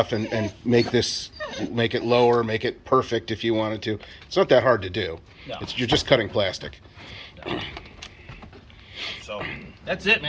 and make it lower, make it perfect if you wanted to. It's not that hard to do. No. You're just cutting plastic. So, that's it,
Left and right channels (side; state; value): both; identical; correlation 1.00